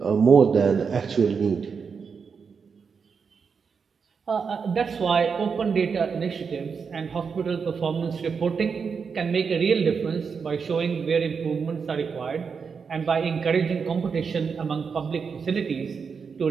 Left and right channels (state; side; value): quieter; left; 5.8 dB